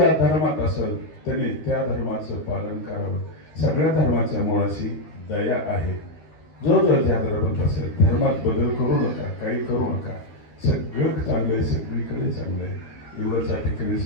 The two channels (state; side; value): late; right; 13 ms